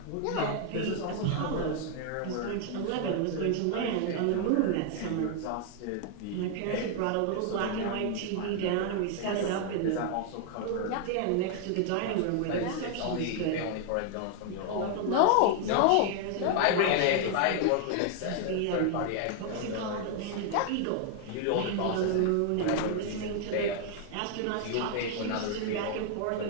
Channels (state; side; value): different; both; correlation 0.00